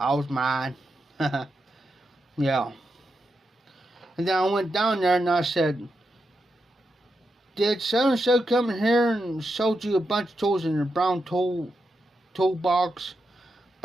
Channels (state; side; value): normal; both; correlation 0.86